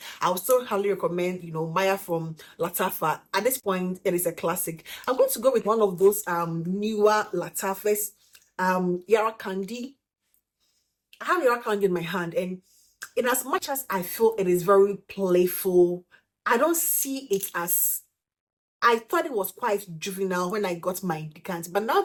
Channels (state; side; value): identical; both; correlation 1.00